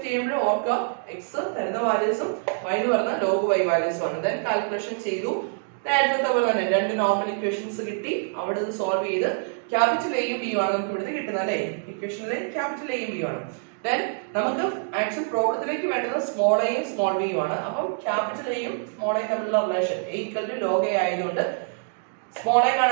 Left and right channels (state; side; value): silent; left; digital silence